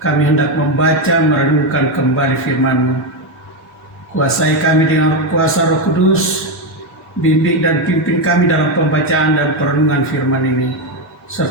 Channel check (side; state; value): both; normal; correlation 0.08